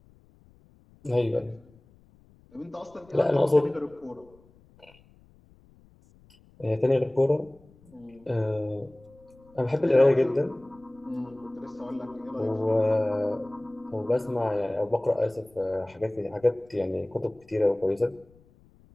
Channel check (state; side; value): noise; left; rumble, 28 dB below the sound